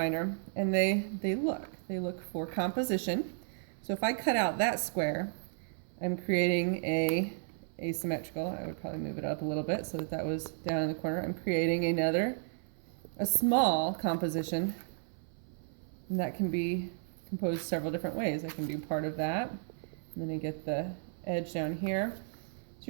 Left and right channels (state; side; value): silent; left; 55 dB below the other